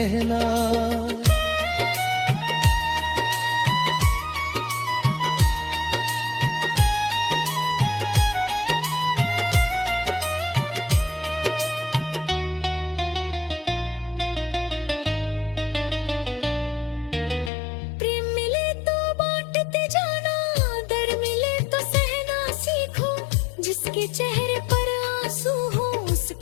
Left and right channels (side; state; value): right; drops out; at 17.5 s